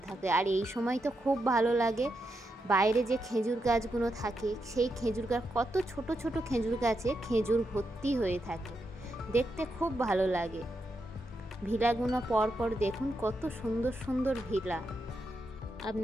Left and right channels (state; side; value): normal; both; correlation 0.84